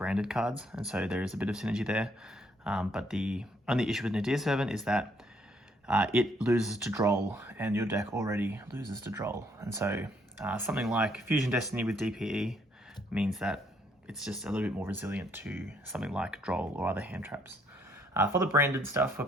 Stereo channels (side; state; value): both; normal; correlation 0.69